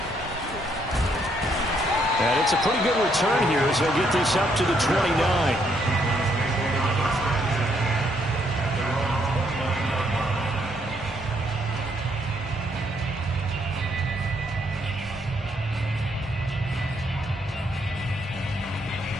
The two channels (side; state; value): both; normal; correlation 0.72